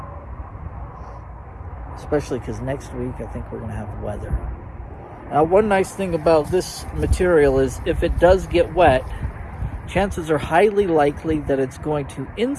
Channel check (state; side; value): identical; both; correlation 1.00